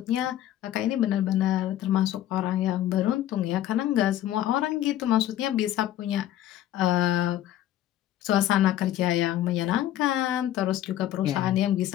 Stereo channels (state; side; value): quieter; right; 12.7 dB